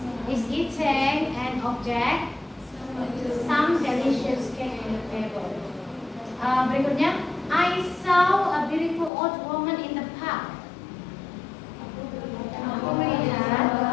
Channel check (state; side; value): drops out; right; at 9.1 s